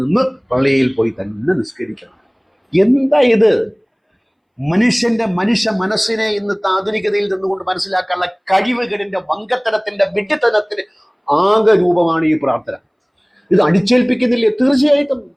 പള്ളിയിൽ പോയി തന്നെ നിസ്കരിക്കണം. എന്താ ഇത്? മനുഷ്യ മനസ്സിനെ ഇന്ന് ആധുനികതയിൽ നിന്നുകൊണ്ട് മനസ്സിലാക്കാനുള്ള കഴിവുകളിന്റെ വങ്കത്തരത്തിന്റെ വിഡ്ഢിത്തനത്തിന് ആകെ രൂപമാണ് ഈ പ്രാർത്ഥന. ഇത് അടിച്ചേൽപ്പിക്കുന്നില്ലേ? തീർച്ചയായിട്ടും.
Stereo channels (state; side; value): identical; both; correlation 1.00